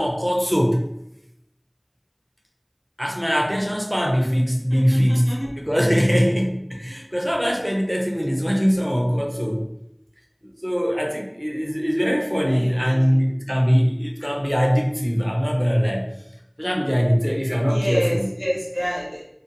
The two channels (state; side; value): identical; both; correlation 1.00